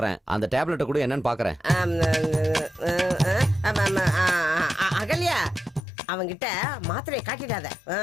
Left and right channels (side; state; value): right; drops out; at 5.8 s